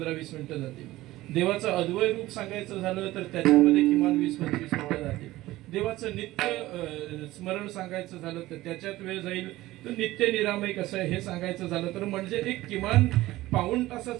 मिनिटं जातील. देवाचं अद्वय रूप सांगायचं झालं तर त्याच्यामध्ये किमान 20-25 मिनिटं जातील. देवाचं नित्य स्मरण सांगायचं झालं तर त्याच्यात वेळ जाईल. तर नित्य निरामय कसं आहे हे सांगायचं झालं तर म्हणजे एक किमान पाऊण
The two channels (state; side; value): quieter; left; 17.2 dB